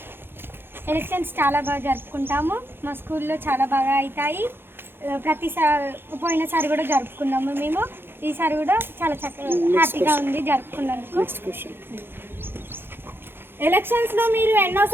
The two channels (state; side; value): late; left; 0.10 ms